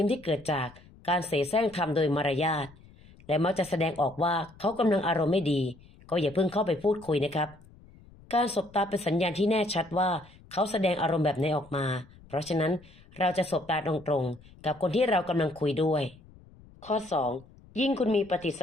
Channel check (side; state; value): left; noise; rumble, 24 dB below the sound